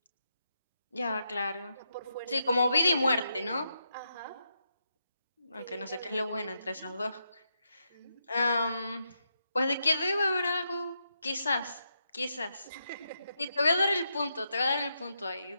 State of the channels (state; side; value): inverted; both; correlation -0.83